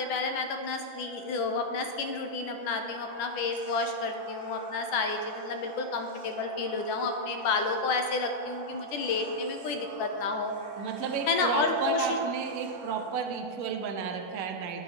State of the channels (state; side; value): late; right; 11 ms